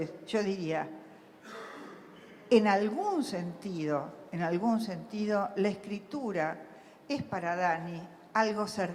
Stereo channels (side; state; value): both; identical; correlation 1.00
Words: yo diría, en algún sentido, la escritura es para Dani algo